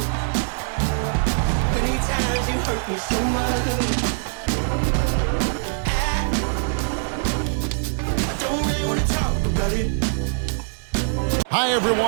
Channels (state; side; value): silent; left; digital silence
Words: Many times you hurt me so much. Hi